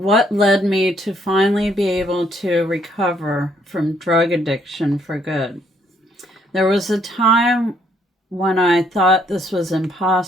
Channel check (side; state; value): both; normal; correlation 0.68